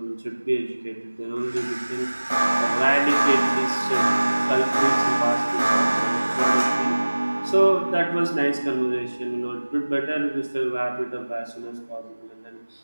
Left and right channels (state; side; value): inverted; both; correlation -1.00